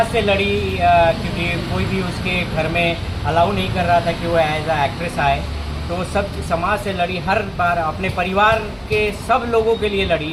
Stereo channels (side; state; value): both; identical; correlation 1.00